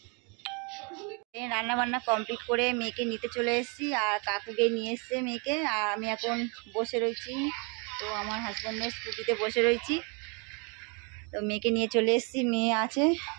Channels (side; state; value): left; quieter; 33.7 dB